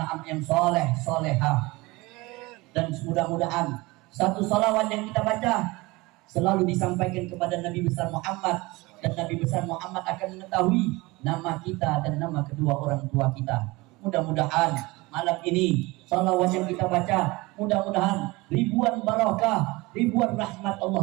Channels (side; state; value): left; quieter; 22.6 dB